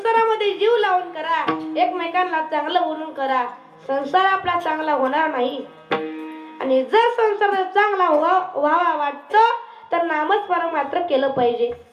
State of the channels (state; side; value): identical; both; correlation 1.00